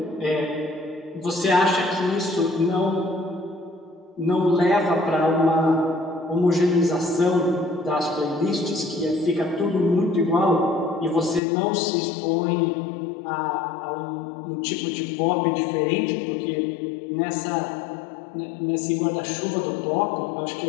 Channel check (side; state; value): right; drops out; at 11.4 s